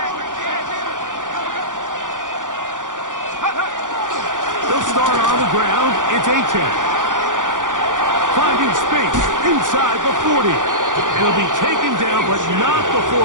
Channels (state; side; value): late; left; 0.88 ms